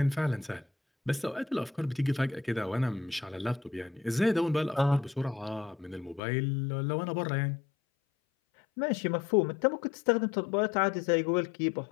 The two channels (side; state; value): right; drops out; at 6.2 s